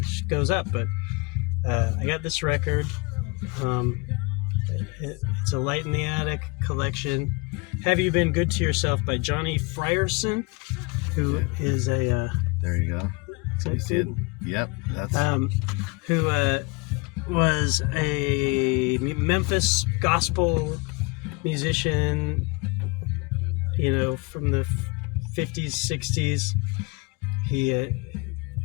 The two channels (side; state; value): right; quieter; 27.6 dB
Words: goes up, but I got this record. It's a Light in the Attic collection. Have You Been Good to Yourself by Johnny Frierson, who is a there you go. You see it? Yep, that's who was a Memphis gospel musician, from the 50s, 60s. He